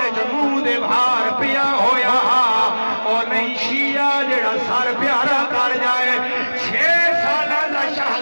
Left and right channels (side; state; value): both; inverted; correlation -1.00